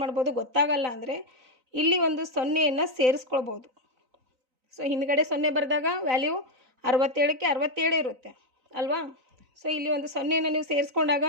ಮಾಡ್ಬೋದು? ಗೊತ್ತಾಗಲ್ಲ ಅಂದರೆ ಇಲ್ಲಿ ಒಂದು 0ಯನ್ನು ಸೇರಿಸ್ಕೊಳ್ಬೋದು. ಸೊ ಹಿಂದ್ಗಡೆ 0 ಬರೆದಾಗ ವ್ಯಾಲ್ಯೂ 67ಕ್ಕೆ 67 ಇರುತ್ತೆ ಅಲ್ವಾ? ಸೊ ಇಲ್ಲಿ ಒಂದು 0ಯನ್ನು ನೀವು ಸೇರಿಸ್ಕೊಂಡಾಗ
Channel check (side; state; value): left; late; 3.9 ms